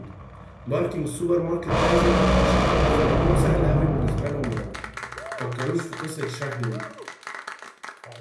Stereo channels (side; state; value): both; identical; correlation 1.00